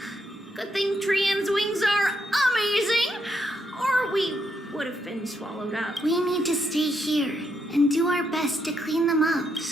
Good thing Trian's wings are amazing, or we would have been swallowed up. We need to stay here and do our best to clean them up.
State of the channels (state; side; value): normal; both; correlation 0.78